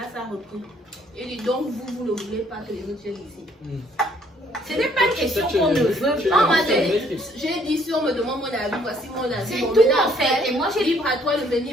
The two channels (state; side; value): normal; both; correlation 0.64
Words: ça a repris. Il dit donc vous ne voulez pas que les autres viennent ici. Ce n'est pas une question qu'on ne veut Non, pas. moi j'ai dit si on me demande mon avis, voici mon avis. C'est Bon, tout maintenant, en fait. Et moi j'ai libre à toi de